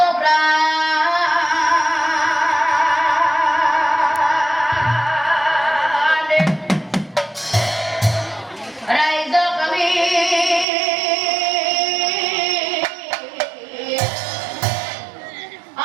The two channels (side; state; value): left; drops out; at 10.7 s